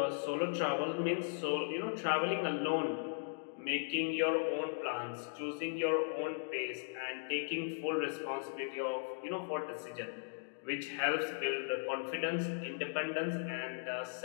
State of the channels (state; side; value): silent; right; digital silence